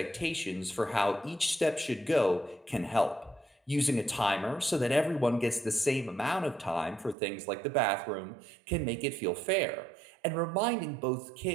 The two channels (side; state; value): left; drops out; at 7.2 s